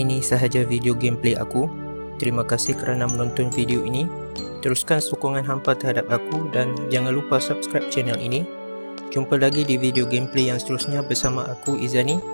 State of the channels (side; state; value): both; inverted; correlation -1.00